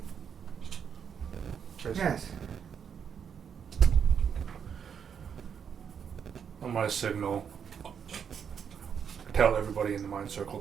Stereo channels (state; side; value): quieter; left; 7.4 dB